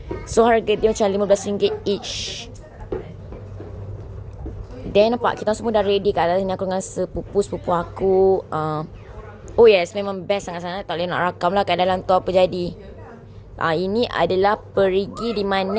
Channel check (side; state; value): both; identical; correlation 1.00